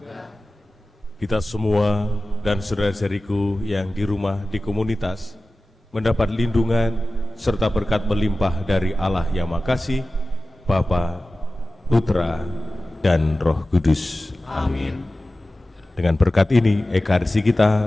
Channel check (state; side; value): normal; both; correlation 0.96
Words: Kita semua dan saudara-saudariku yang di rumah, di komunitas, mendapat lindungan serta berkat melimpah dari Allah yang Maha Kasih, Bapa, Putra, dan Roh Kudus. Amin. Dengan berkat ini, ekaristi